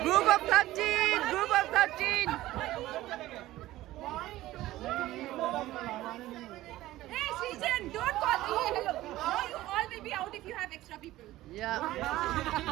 group of 13, group of 13. Hey, Srijan, don't call me. Hello. Now you all will be out if you have extra people. Yeah.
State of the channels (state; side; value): quieter; left; 16.0 dB